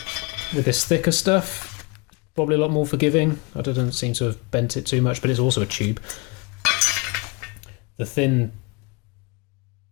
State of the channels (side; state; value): right; quieter; 28.8 dB